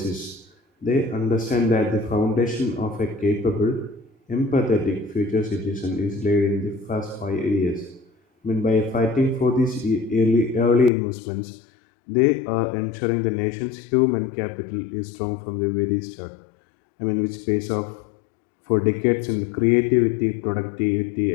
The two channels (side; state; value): right; drops out; at 10.9 s